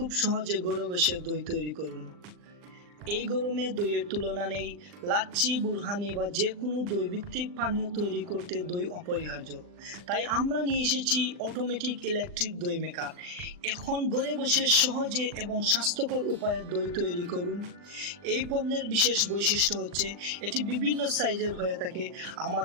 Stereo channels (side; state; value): left; late; 40 ms